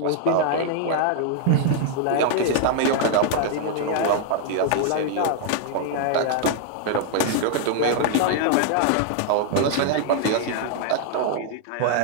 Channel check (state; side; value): different; both; correlation 0.00